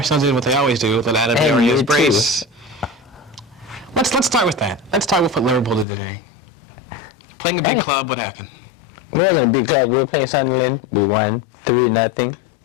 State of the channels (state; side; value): drops out; right; at 5.9 s